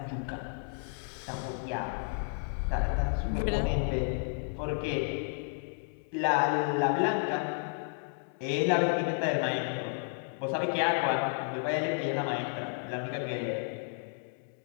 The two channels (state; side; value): silent; right; 56 dB below the other